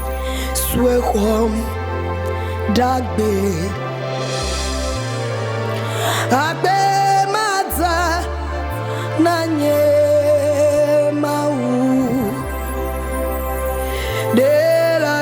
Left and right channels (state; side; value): identical; both; correlation 1.00